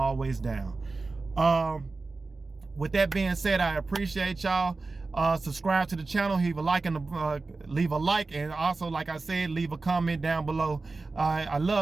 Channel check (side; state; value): left; quieter; 3.7 dB